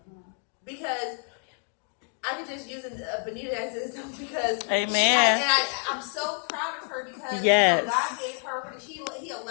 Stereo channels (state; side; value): quieter; right; 40.0 dB